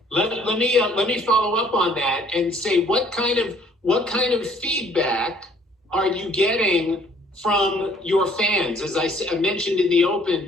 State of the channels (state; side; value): normal; both; correlation 0.60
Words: Let me follow up on that and say what kind of feedback are you getting from your fans? As I mentioned in the